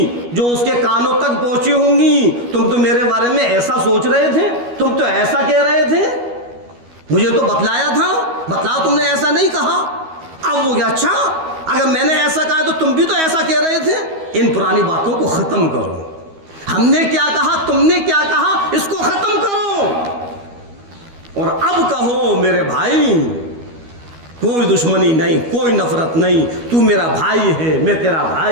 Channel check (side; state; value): left; late; 12 ms